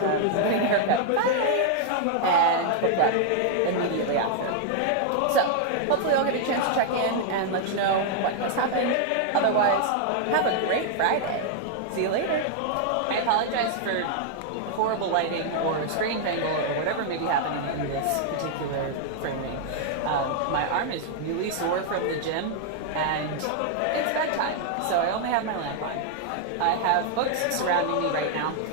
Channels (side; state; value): both; different; correlation 0.00